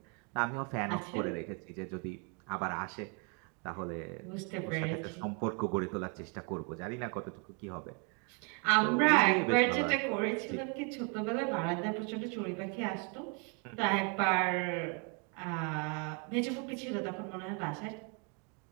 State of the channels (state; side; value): quieter; left; 35.9 dB